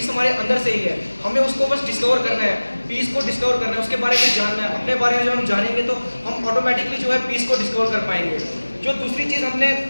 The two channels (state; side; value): inverted; both; correlation -1.00